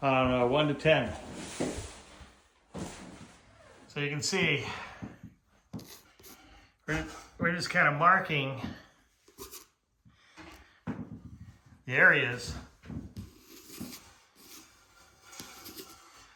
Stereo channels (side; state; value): both; identical; correlation 1.00